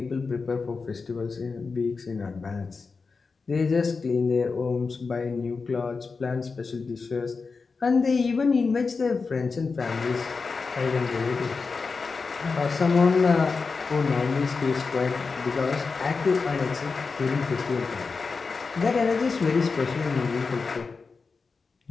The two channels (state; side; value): quieter; right; 4.6 dB